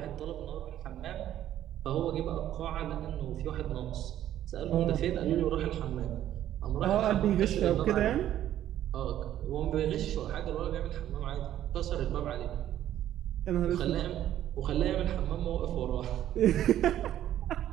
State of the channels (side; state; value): left; quieter; 11.9 dB